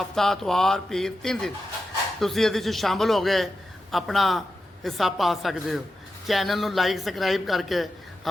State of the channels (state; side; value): normal; both; correlation 0.90